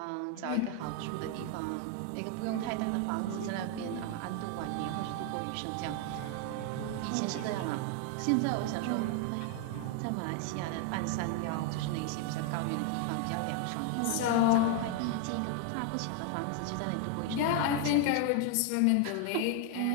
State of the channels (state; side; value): different; both; correlation 0.00